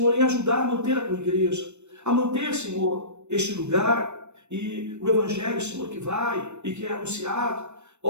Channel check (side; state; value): left; late; 0.82 ms